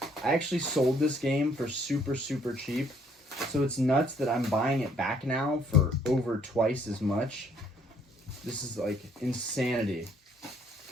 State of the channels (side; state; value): both; normal; correlation 0.65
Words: I actually sold this game for super, super cheap. So it's nuts that I'm buying it back now for over twice as much. This is like insanity.